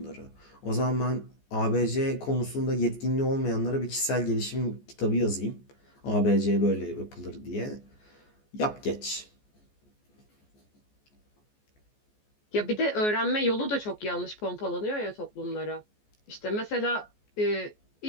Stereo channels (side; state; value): right; late; 14 ms